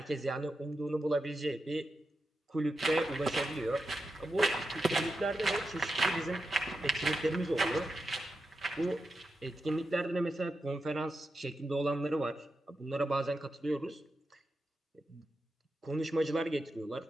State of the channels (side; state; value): both; normal; correlation 0.88